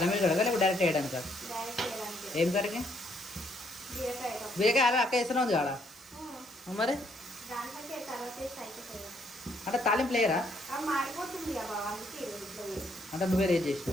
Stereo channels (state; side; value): normal; both; correlation 0.70